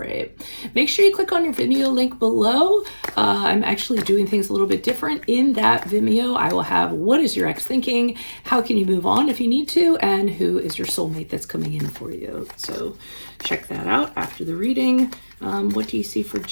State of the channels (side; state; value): both; inverted; correlation -1.00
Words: Make sure you click on your Vimeo link below. I'm actually doing things a little bit different in that Vimeo. I will have what is your ex thinking, how can you move on if you need to, and who is your soulmate that's coming in for you. So check that out after the reading. What do you see for